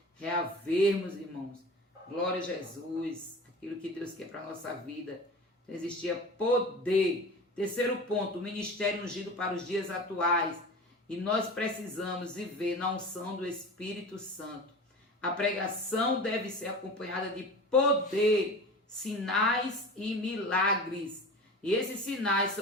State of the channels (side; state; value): both; normal; correlation 0.35